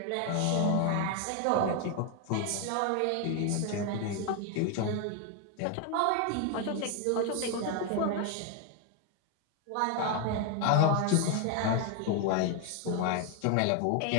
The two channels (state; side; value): different; both; correlation 0.01